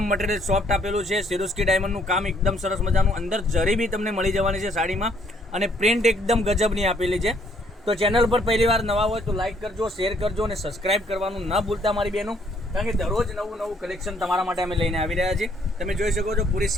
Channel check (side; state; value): both; normal; correlation 0.66